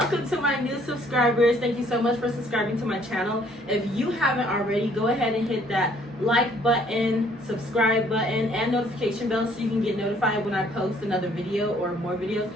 to my new subscribers. Thank you so much for subscribing to my channel. If you haven't already, go ahead and hit that like button, subscribe button, and notification bell so you can get notified when I post another video or more videos,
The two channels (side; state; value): both; normal; correlation 0.62